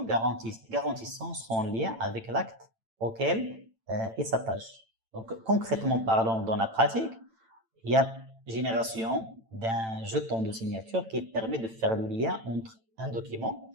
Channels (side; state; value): left; late; 8.9 ms